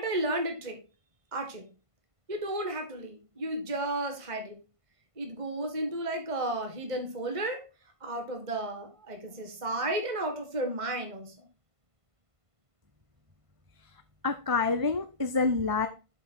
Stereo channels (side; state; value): left; late; 1.5 ms